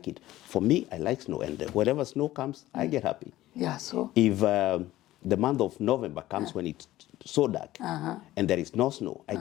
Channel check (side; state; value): right; quieter; 15.5 dB